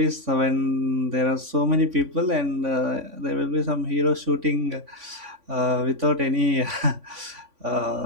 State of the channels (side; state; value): left; late; 3.5 ms